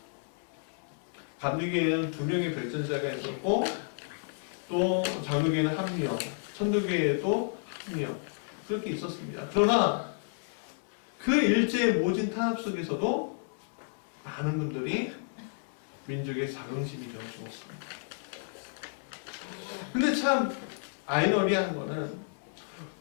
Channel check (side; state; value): right; silent; digital silence